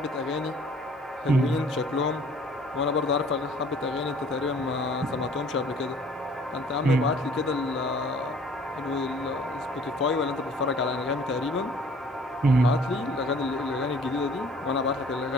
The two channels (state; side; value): normal; both; correlation 0.54